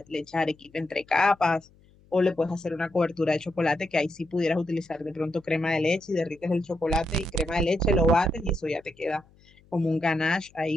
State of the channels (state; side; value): noise; left; hum, 29 dB below the sound